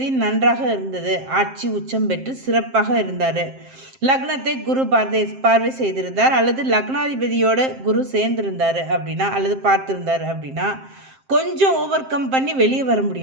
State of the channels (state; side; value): late; left; 7.6 ms